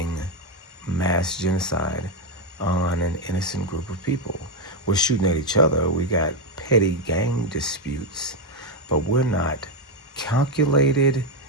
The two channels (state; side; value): normal; both; correlation 0.05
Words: mass genocide on an innocent group of people. We're shooting at each other. We got petty gang disputes, but we're not calculated,